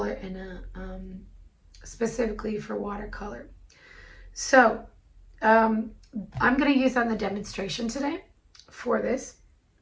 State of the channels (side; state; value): both; identical; correlation 1.00